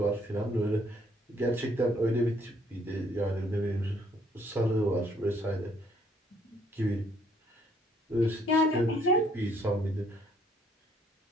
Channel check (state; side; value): normal; both; correlation 0.65